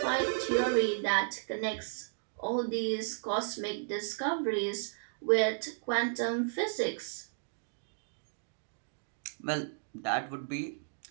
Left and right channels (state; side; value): silent; left; digital silence